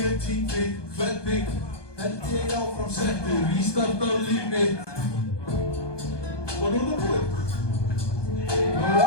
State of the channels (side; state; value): right; late; 1.2 ms